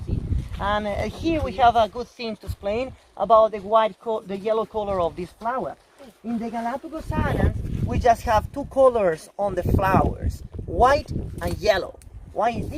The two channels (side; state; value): both; identical; correlation 1.00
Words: see. And here we have a good thing to explain about the yellow color of this flower. In the Galapagos Islands, we just have two colors on the flowers, white and yellow. Why is